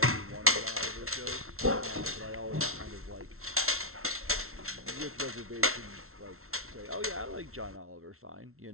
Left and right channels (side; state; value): left; late; 0.62 ms